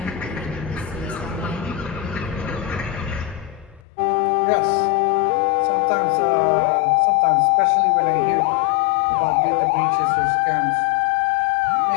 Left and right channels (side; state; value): right; drops out; at 3.8 s